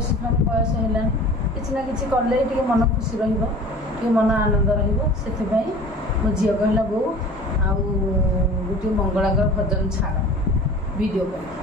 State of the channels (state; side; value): normal; both; correlation 0.42